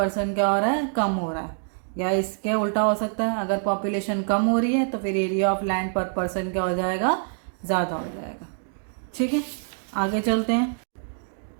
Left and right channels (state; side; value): silent; left; 61 dB below the other